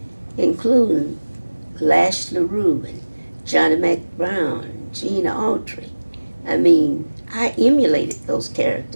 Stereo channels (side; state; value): both; inverted; correlation -1.00